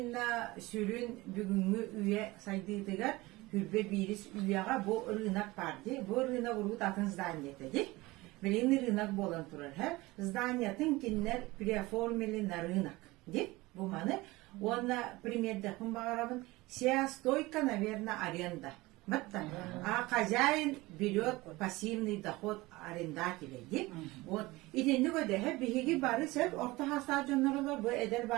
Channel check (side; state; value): left; quieter; 20.8 dB